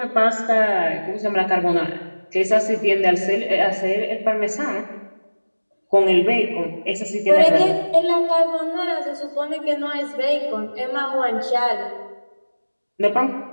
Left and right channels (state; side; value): inverted; both; correlation -1.00